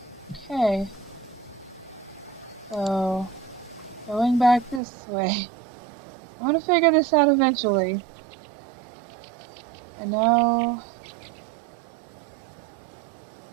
that. Okay. So, going back this way. I'm gonna figure this out eventually. I know...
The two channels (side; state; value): left; drops out; at 4.8 s